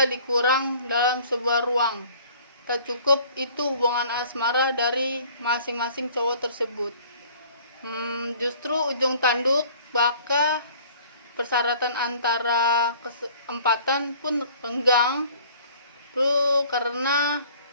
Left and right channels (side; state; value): both; inverted; correlation -0.52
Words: dikurang dalam sebuah ruang. Tak cukup itu hubungan asmara dari masing-masing cowok tersebut. Justru ujung tanduk baka persyaratan antara keempatan pun renggang karena